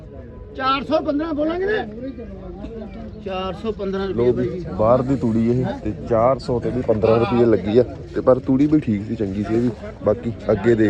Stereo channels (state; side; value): identical; both; correlation 1.00